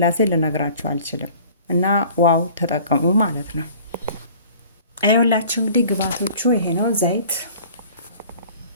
ልነግራችሁ አልችልም። እና ዋው ተጠቀሙ ማለት ነው። አይወላችሁ እንግዲህ ግብአቶቹ ይሄ ነው። ዘይት፣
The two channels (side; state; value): both; inverted; correlation -0.48